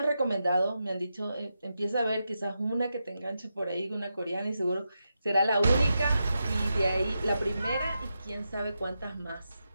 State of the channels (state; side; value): inverted; both; correlation -0.87